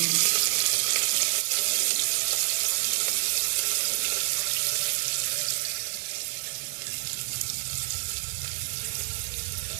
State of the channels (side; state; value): left; silent; 60 dB below the other